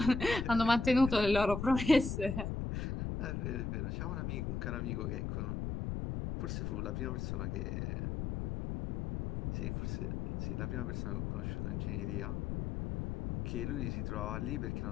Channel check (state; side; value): noise; left; rumble, 2 dB below the sound